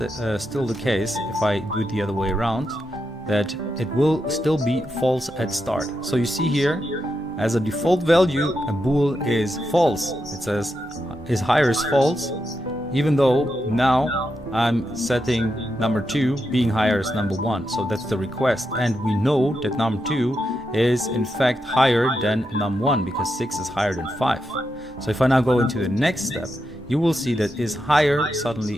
case. If I do it the other way around, that it will still be false at start. So you see here, as a default value, a bool is false. It says is higher is false, even though now I'm setting number 2 being higher as number 1. So that's the request, and we know that num 2 is in fact higher than num 1 because 6 is higher than 5. So if I now go into the next step, you will see that is higher suddenly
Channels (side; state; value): both; normal; correlation 0.85